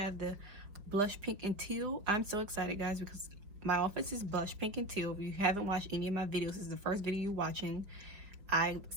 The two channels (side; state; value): left; late; 4.9 ms